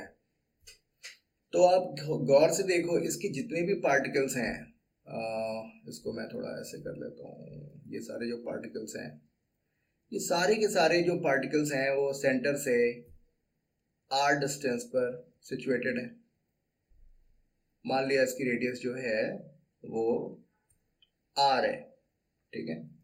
तो आप गौर से देखो, इसके जितने भी पार्टिकल्स हैं, इसको मैं थोड़ा ऐसे कर लेता हूँ, ये सारे जो पार्टिकल्स हैं, ये सारे के सारे जो पार्टिकल्स हैं वो सेंटर से r डिस्टेंस पर सिचुएटेड है। मान लिया इसकी रेडियस जो है वो r है, ठीक है।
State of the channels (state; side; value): identical; both; correlation 1.00